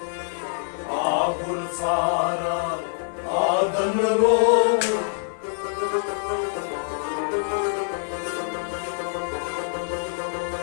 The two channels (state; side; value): silent; right; digital silence